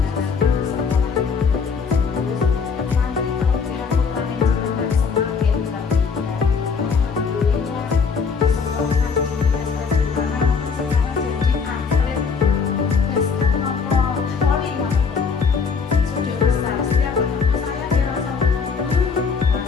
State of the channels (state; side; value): quieter; right; 5.5 dB